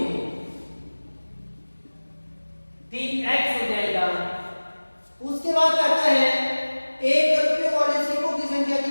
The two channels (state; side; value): inverted; both; correlation -1.00